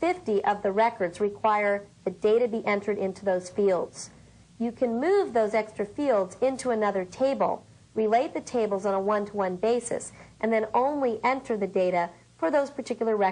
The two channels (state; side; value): identical; both; correlation 1.00